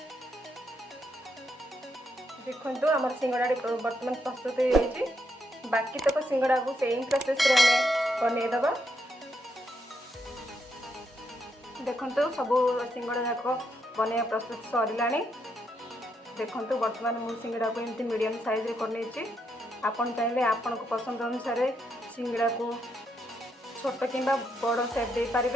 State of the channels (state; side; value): normal; both; correlation 0.79